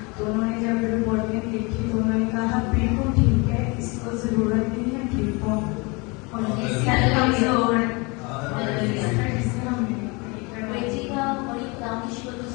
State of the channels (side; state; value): right; quieter; 28.0 dB